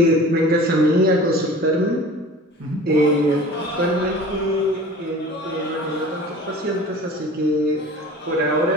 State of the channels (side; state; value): both; normal; correlation 0.41